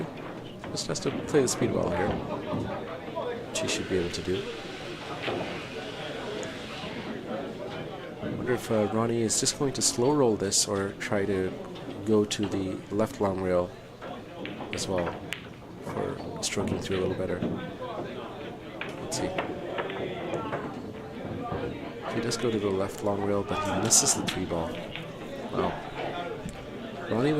Just has to play the speed well here, which he should be able to do. I wonder if Ronnie is just going to slow roll this or try to go to the left long rail as well for stroking through a little better. Let's see. He does go to the left long rail, but he misses the 3 ball. Wow. Ronnie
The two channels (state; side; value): identical; both; correlation 1.00